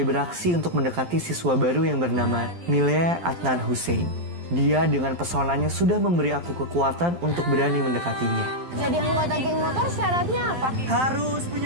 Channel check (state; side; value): late; left; 12 ms